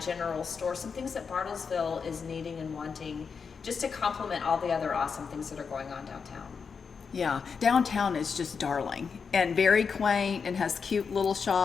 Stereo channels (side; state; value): right; quieter; 5.8 dB